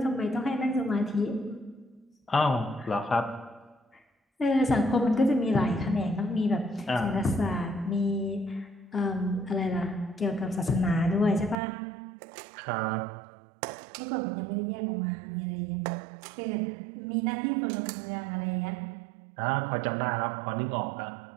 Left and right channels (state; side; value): drops out; left; at 11.6 s